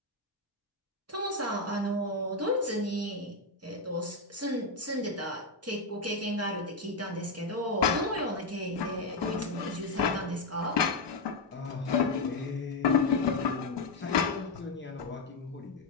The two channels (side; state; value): right; quieter; 3.3 dB